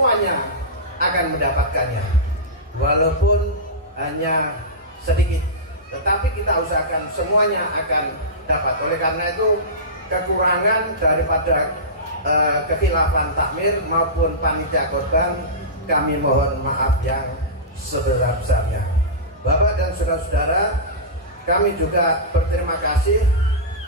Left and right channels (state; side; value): normal; both; correlation -0.17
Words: akan mendapatkannya, walaupun hanya sedikit, tetapi kita usahakan semuanya akan dapat. Oleh karena itu kekurangan daripada kekhilafan takmir maupun panitia korban, kami mohon maaf yang sebesar-besarnya. Bapak dan saudara-saudara, kami juga berterima kasih